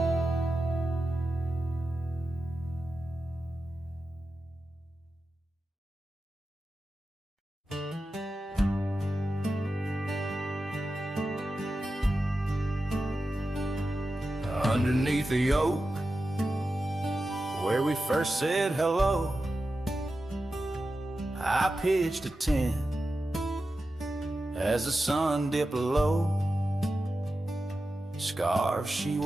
Underneath the oak, where we first said hello, I pitched a tent as the sun dipped low. Scarves she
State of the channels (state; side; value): normal; both; correlation 0.92